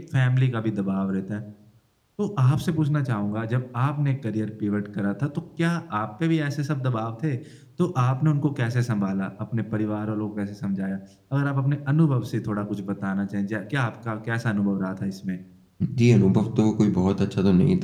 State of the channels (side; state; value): both; identical; correlation 1.00